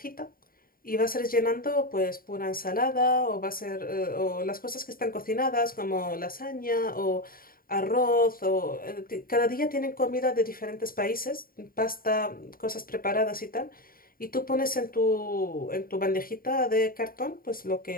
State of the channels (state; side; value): late; right; 0.42 ms